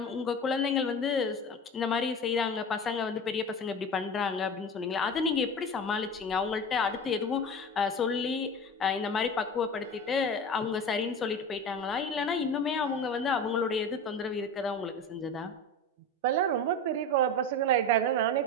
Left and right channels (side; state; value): both; normal; correlation 0.30